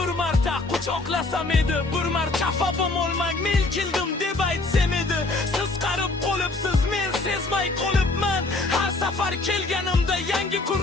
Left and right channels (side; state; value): right; quieter; 3.2 dB